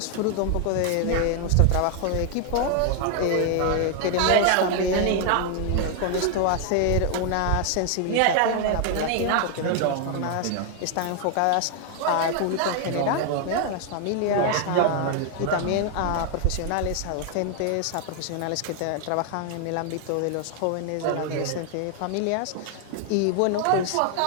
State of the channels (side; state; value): both; different; correlation 0.00